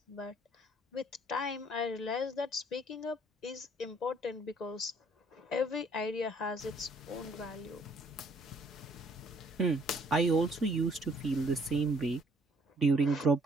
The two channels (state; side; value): normal; both; correlation 0.63